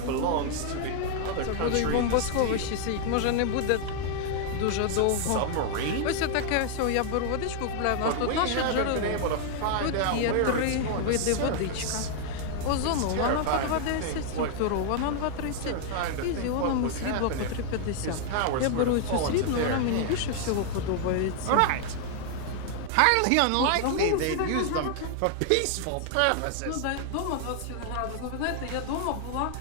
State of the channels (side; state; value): both; different; correlation 0.00